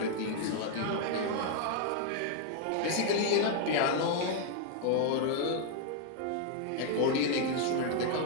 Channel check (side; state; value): both; different; correlation 0.00